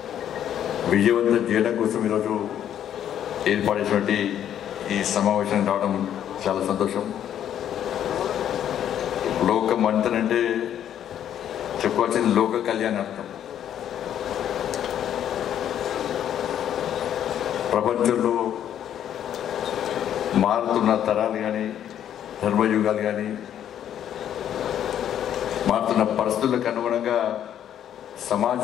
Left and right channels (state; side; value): quieter; right; 10.2 dB